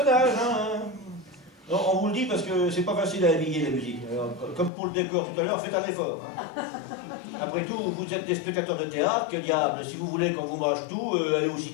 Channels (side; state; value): right; drops out; at 4.7 s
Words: hein. Non, on vous le dit parce que c'est pas facile à habiller la musique. Alors, comme pour le décor tout à l'heure, faites un effort. Hein. Après tout, vous êtes des spectateurs de théâtre, que diable, si vous voulez qu'on vous mâche tout, allez au